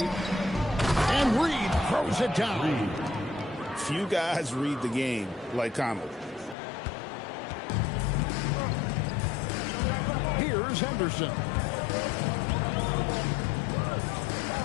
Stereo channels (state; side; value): drops out; right; at 6.6 s